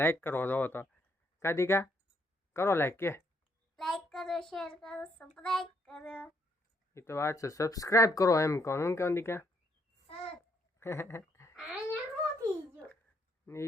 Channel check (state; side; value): normal; both; correlation 0.73